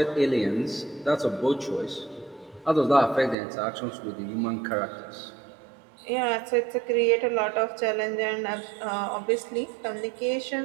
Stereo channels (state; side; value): drops out; left; at 3.4 s